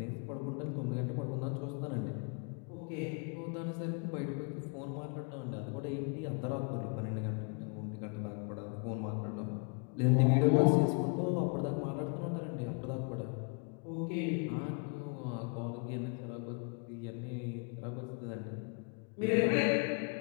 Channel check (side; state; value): right; quieter; 37.0 dB